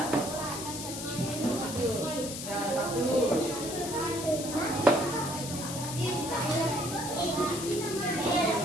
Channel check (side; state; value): left; noise; hiss, 7 dB below the sound